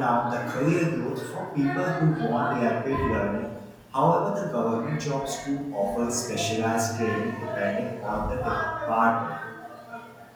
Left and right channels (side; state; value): both; identical; correlation 1.00